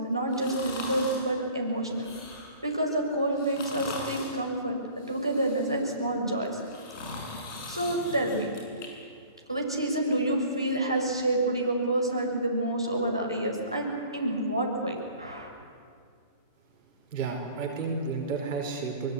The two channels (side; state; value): both; inverted; correlation -0.49